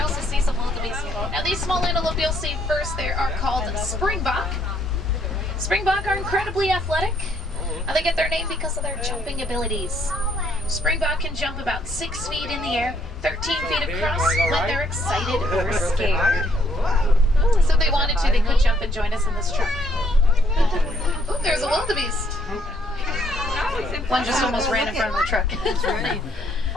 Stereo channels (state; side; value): normal; both; correlation 0.69